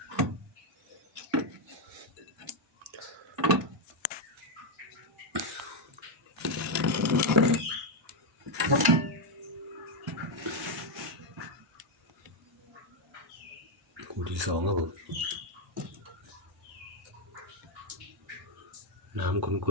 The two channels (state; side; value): normal; both; correlation 0.02